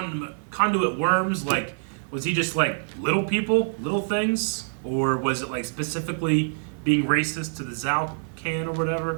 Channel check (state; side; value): silent; left; 61 dB below the other